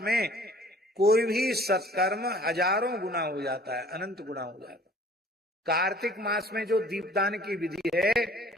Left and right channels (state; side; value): normal; both; correlation 0.52